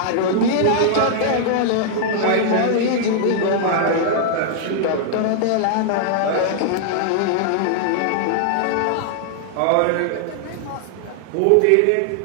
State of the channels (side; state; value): both; different; correlation -0.01